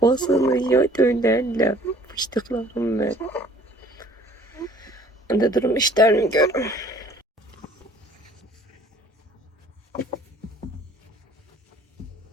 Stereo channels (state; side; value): normal; both; correlation 0.55